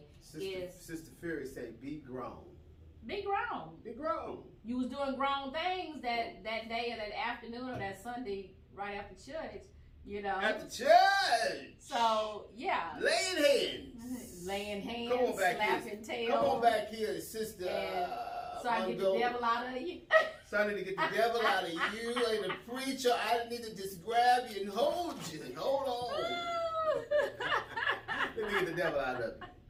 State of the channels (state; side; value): identical; both; correlation 1.00